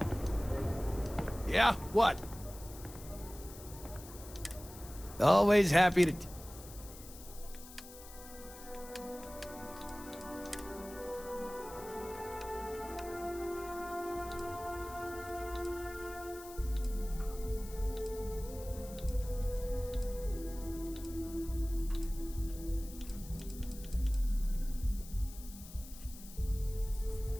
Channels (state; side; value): noise; left; hiss, 16 dB below the sound